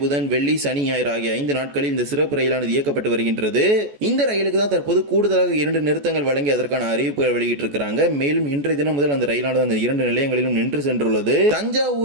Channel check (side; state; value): left; late; 14 ms